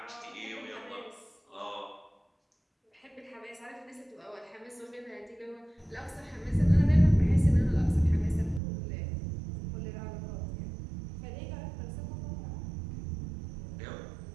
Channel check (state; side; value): drops out; left; at 8.6 s